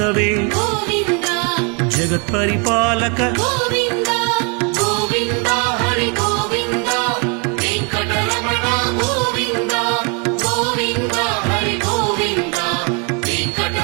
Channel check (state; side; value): quieter; left; 34.6 dB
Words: గోవింద జగత్పరిపాలక గోవింద గోవింద హరి గోవింద వెంకటరమణ గోవింద గోవింద హరి గోవింద